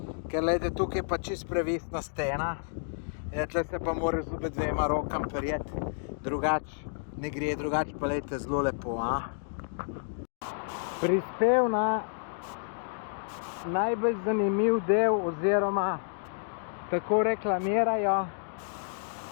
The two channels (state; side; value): silent; right; digital silence